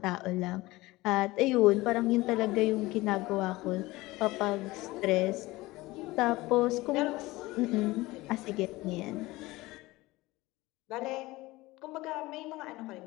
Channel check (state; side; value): quieter; right; 19.9 dB